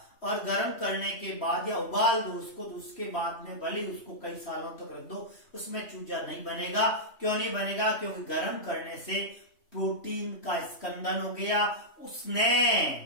और गर्म करने के बाद या उबाल दो उसको, तो उसके बाद में भले उसको कई सालों तक रख दो, उसमें चूजा नहीं बनेगा। क्यों नहीं बनेगा? क्योंकि गर्म करने से प्रोटीन का स्कंदन हो गया, उसने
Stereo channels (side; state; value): right; late; 3.1 ms